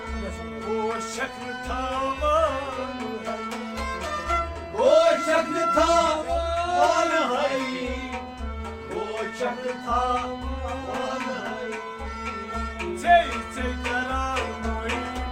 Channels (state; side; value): identical; both; correlation 1.00